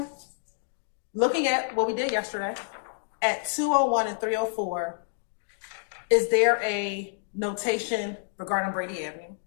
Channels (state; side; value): silent; right; digital silence